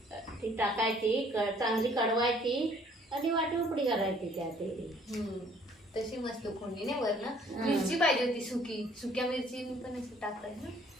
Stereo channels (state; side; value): normal; both; correlation 0.59